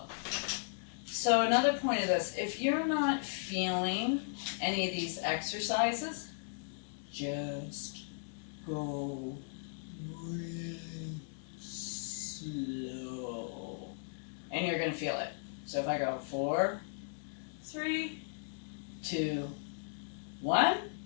So another point of this, if you're not feeling any of these exercises, just go really slow. And you're going to feel it. So if I go 4, 3, 2, 1,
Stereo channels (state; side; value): silent; right; digital silence